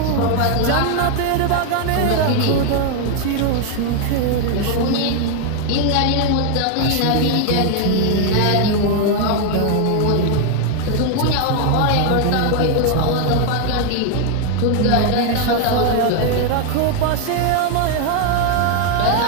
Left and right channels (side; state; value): both; different; correlation 0.00